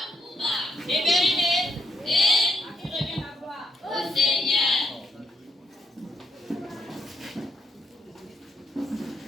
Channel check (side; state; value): both; normal; correlation 0.77